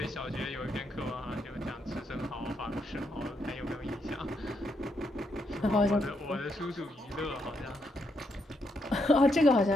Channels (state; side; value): normal; both; correlation 0.78